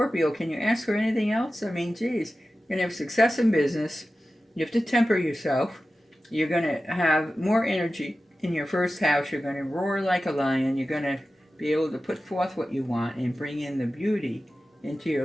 can you ask for anything else? I mean, geez, you're going to have success in business. You have to temper yourself. You're going to have more energy in your first house. You're going to roar like a lion. You're going to be able to put forth what you want and bring in the beauty into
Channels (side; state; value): both; normal; correlation 0.94